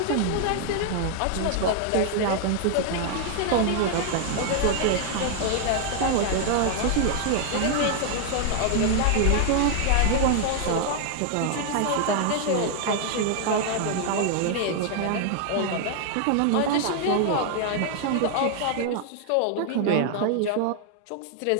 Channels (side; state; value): both; different; correlation 0.00